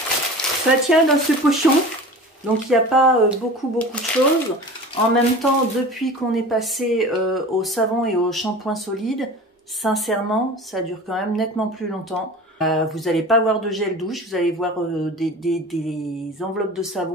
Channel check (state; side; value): normal; both; correlation 0.37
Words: ça tient dans ce pochon, donc il n'y a pas beaucoup de choses. En même temps, depuis qu'on est passé au savon et au shampoing solide, sincèrement, ça dure quand même nettement plus longtemps. Vous n'allez pas voir de gel douche, vous allez voir des enveloppes de